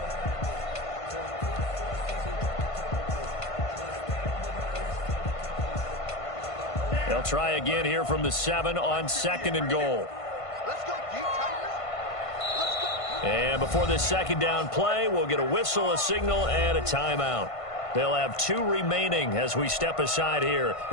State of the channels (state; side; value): late; right; 1.5 ms